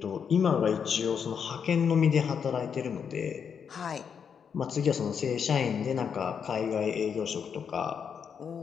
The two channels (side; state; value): right; quieter; 7.1 dB